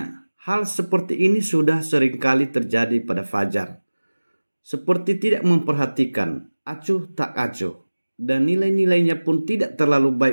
Hal seperti ini sudah seringkali terjadi pada Fajar. Seperti tidak memperhatikan, acuh tak acuh, dan nilai-nilainya pun tidak terlalu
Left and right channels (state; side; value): inverted; both; correlation -1.00